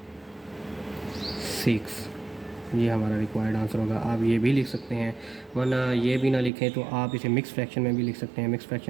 ये हमारा रिक्वायर्ड आंसर होगा। आप ये भी लिख सकते हैं, वरना ये भी ना लिखें तो आप इसे मिक्स फ्रैक्शन में भी लिख सकते हैं। मिक्स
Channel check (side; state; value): left; drops out; at 6.5 s